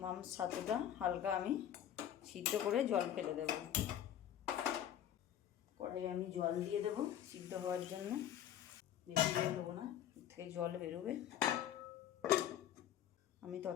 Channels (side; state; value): right; quieter; 10.6 dB